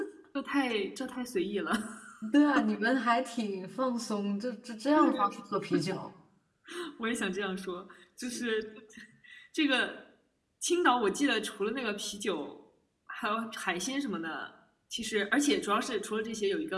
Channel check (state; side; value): identical; both; correlation 1.00